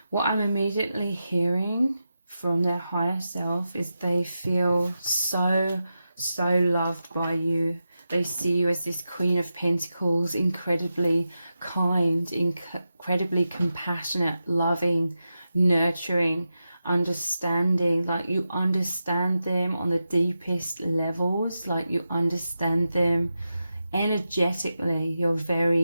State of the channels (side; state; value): both; inverted; correlation -0.90